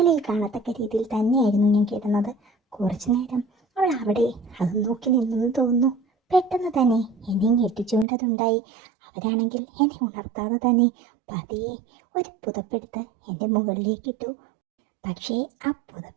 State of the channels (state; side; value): drops out; left; at 8.1 s